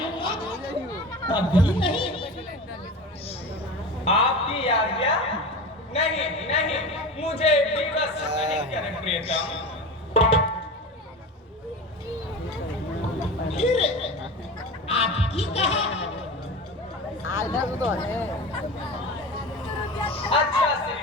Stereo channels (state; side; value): normal; both; correlation 0.30